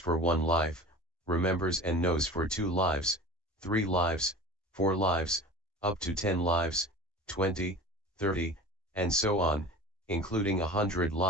one life, remembers and knows for 2 lives, 3 lives, 4 lives, up to 10 lives, 20, 30, and so on, including 100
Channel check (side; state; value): both; normal; correlation 0.37